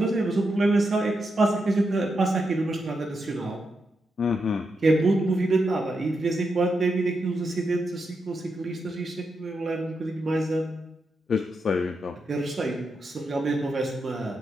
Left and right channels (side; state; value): both; normal; correlation 0.85